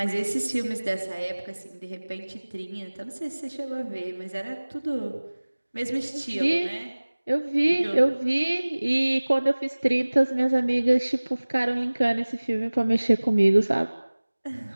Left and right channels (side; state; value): both; inverted; correlation -1.00